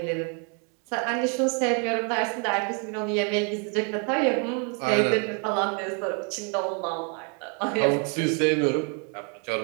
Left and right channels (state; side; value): quieter; left; 38.5 dB